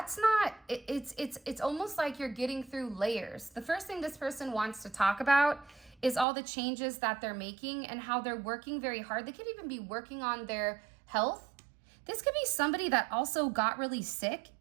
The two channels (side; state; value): left; drops out; at 6.2 s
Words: not, it's almost like you're getting through layers. The first thing this person wants to talk about is all the changes that they're making and how they're working very hard. They could even be working on their health. This could be somebody that also got really sick.